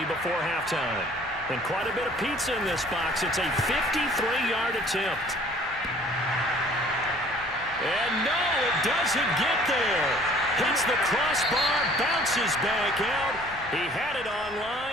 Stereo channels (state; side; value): normal; both; correlation 0.54